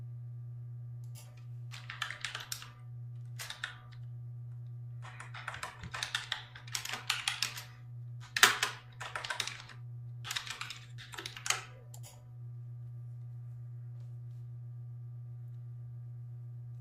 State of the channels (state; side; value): identical; both; correlation 1.00